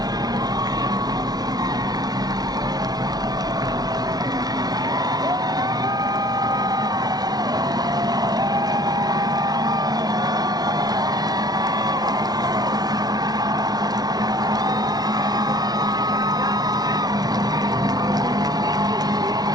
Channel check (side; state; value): left; late; 0.19 ms